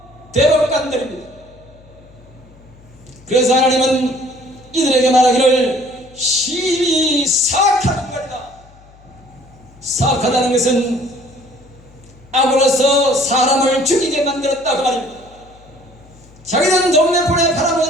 대법관들입니다. 그래서 하나님은 이들에게 말하기를 심히 사악한 인간이다. 사악하다는 것은 악으로서 사람을 죽이게 만들었다 그 말입니다. 자기는 동네폰에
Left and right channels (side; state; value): left; noise; hum, 26 dB below the sound